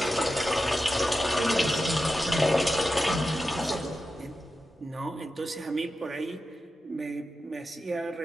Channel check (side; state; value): both; normal; correlation 0.91